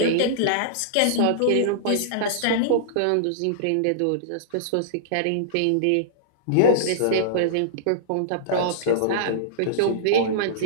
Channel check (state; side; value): different; both; correlation -0.02